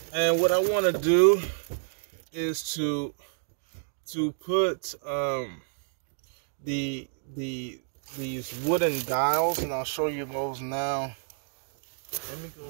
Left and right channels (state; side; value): silent; left; digital silence